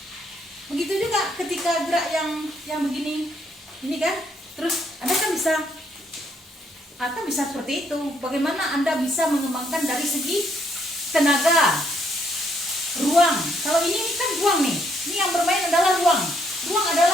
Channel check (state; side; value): normal; both; correlation 0.71